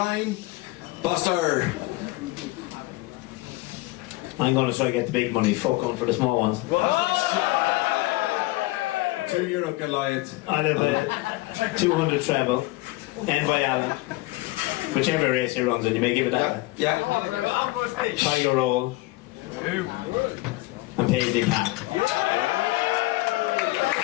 Buster. I'm going to try to get the big money. Fuck on for the small ones. €2 Goliath. I live with 200 treble. End by Allen. Whichever race he runs in, you may give it that. Yeah. Tiger roll. And Paisley Pack.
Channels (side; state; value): right; quieter; 20.7 dB